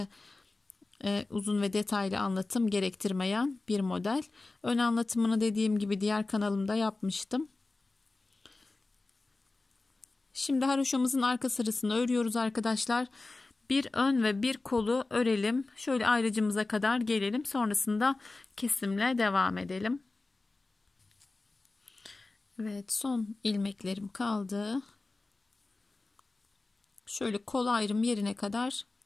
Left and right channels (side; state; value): right; quieter; 3.3 dB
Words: uzun ve detaylı anlatım gerektirmeyen bir model. Ön anlatımını dediğim gibi diğer kanalımda yapmıştım. Şimdi haroşamızın arka sırasını örüyoruz arkadaşlar. Bir ön ve bir kolu örelim. Şöyle ayrıcımıza kadar gelelim. Sonrasında kesimle devam edelim. Evet, son ilmeklerim kaldı. Şöyle kol ayrım yerine kadar